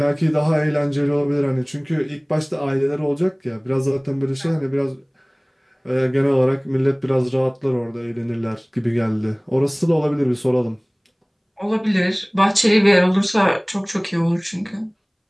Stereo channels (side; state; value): both; identical; correlation 1.00